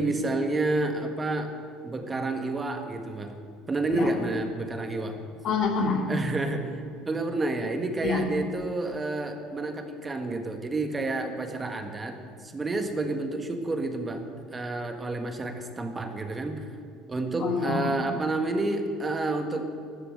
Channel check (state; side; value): normal; both; correlation 0.69